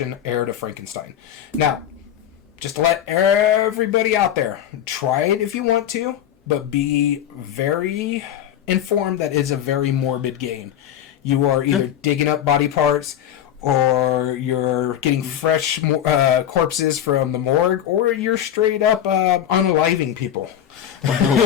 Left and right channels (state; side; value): quieter; right; 10.5 dB